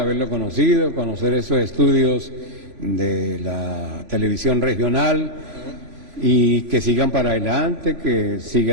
conocido, conocer estos estudios de la televisión regional, y que sigan para adelante, que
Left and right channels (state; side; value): late; left; 3.0 ms